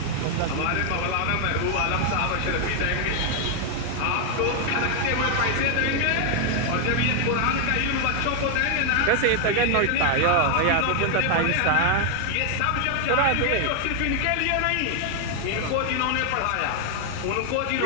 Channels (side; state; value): both; different; correlation 0.00